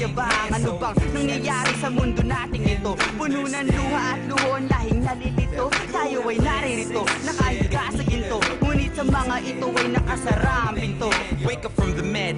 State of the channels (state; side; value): identical; both; correlation 1.00